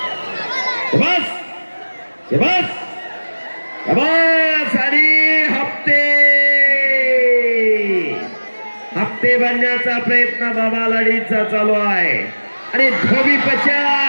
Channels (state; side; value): inverted; both; correlation -1.00